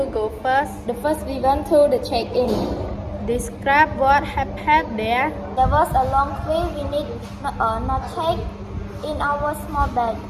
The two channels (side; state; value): both; identical; correlation 1.00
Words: go first? The first we went to the check-in. Describe what happened there. There was a long queue. We need not take in our small bag.